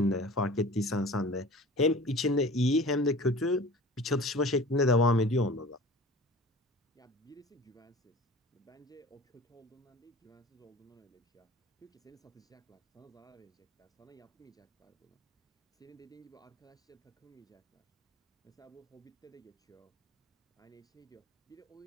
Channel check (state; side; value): normal; both; correlation 0.41